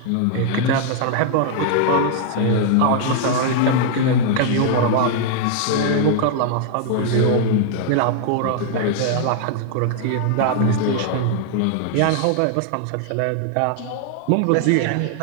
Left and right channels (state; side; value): different; both; correlation 0.00